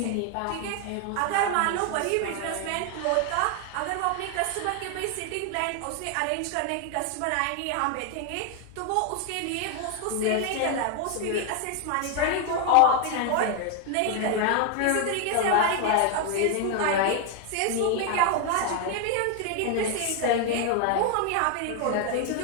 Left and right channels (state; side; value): different; both; correlation 0.00